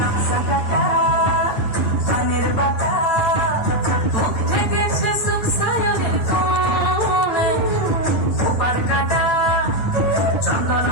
কাটা চানের বাটা, মুখ ঢেকেছে সুখ সায়নের কোণে। ওপার কাটা চন্দন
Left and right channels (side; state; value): right; late; 8.9 ms